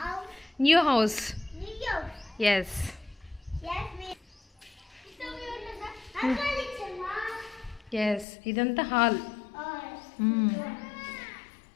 న్యూ హౌస్. ఎస్, ఎస్, ఇదంతా హాల్.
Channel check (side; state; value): right; drops out; at 8.2 s